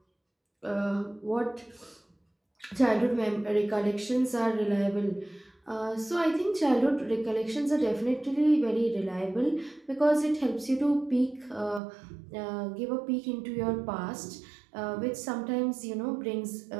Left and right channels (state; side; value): drops out; left; at 11.8 s